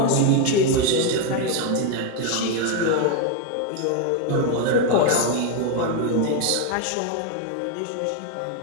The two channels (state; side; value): different; both; correlation 0.01